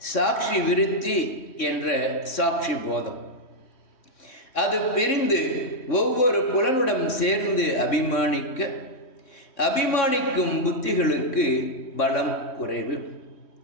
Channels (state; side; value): late; right; 3.1 ms